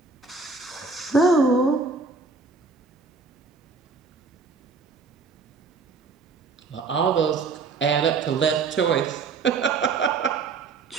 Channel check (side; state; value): left; quieter; 4.5 dB